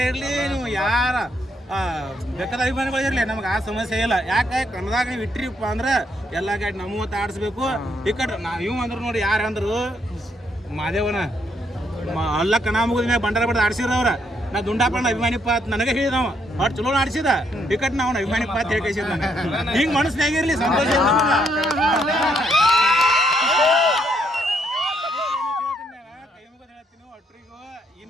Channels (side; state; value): both; normal; correlation 0.73